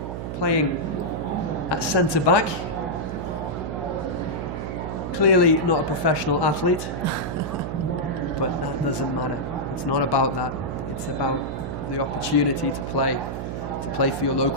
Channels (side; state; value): right; noise; hum, 5 dB below the sound